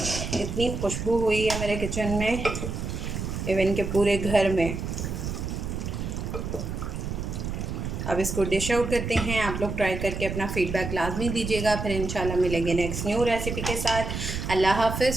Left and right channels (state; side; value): noise; right; rumble, 4 dB below the sound